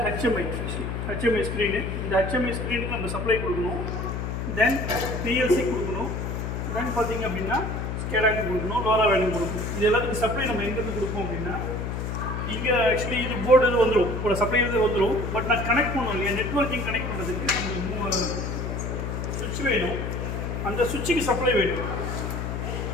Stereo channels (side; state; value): left; noise; hum, 3 dB below the sound